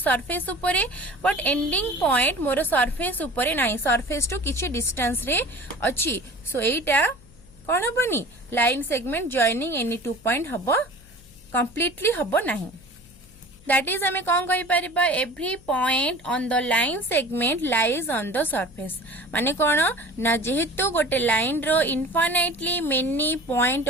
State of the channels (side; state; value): left; noise; hum, 25 dB below the sound